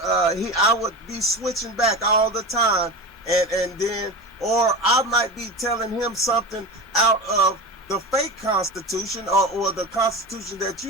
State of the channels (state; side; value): normal; both; correlation 0.27